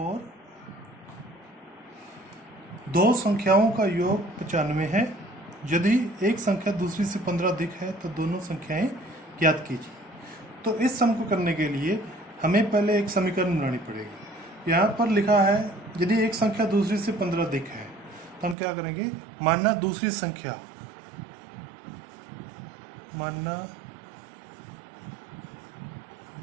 दो संख्याओं का योग 95 है। यदि एक संख्या दूसरी से 15 अधिक है तो दोनों संख्याएं ज्ञात कीजिए। तो इस सम को करने के लिए हमें पहले एक समीकरण बनानी पड़ेगी। यहाँ पर लिखा है यदि एक संख्या दूसरी से 15 अधिक है तो हम क्या करेंगे, मानना दूसरी संख्या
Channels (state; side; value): drops out; left; at 18.6 s